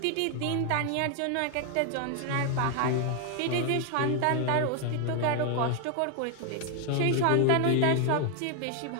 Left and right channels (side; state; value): both; different; correlation 0.00